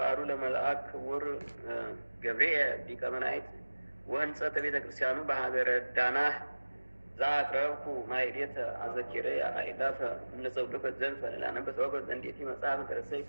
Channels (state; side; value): inverted; both; correlation -1.00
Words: ለመልአክ ክቡር ገብርኤል ሊቀ መላእክት ወህንጸተ ቤተ ክርስቲያኑ በሀገረ ዳናህ ዛቅረብኩ ማይሌተ አዘኪሬ አይላፈ እምነጸውልፈ ዘልፈ ላነበ ተወገዝ እንዴት መጽሐፍ ተረሰይ